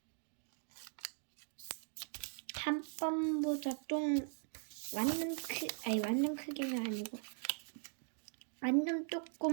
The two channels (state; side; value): silent; left; 51 dB below the other